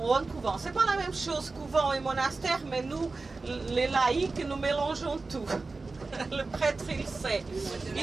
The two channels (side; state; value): left; quieter; 3.7 dB